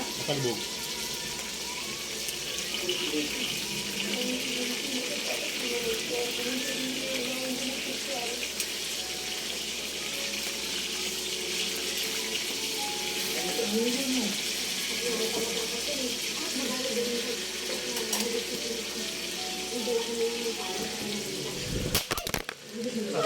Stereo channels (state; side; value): identical; both; correlation 1.00